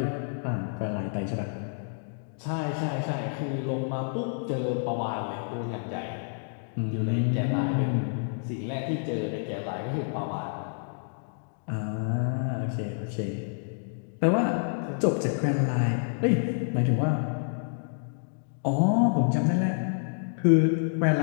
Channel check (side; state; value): right; silent; digital silence